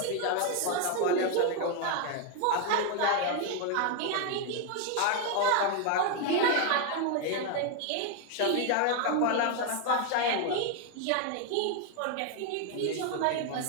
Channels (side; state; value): both; different; correlation 0.01